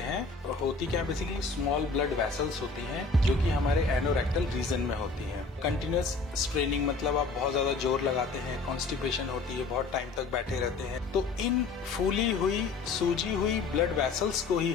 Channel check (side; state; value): right; quieter; 4.1 dB